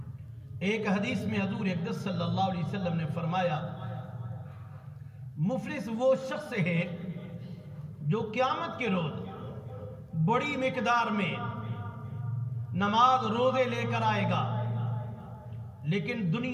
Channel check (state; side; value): identical; both; correlation 1.00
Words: ایک حدیث میں حضور اقدس صلی اللہ علیہ وسلم نے فرمایا مفلس وہ شخص ہے جو قیامت کے روز بڑی مقدار میں نماز روزے لے کر آئے گا، لیکن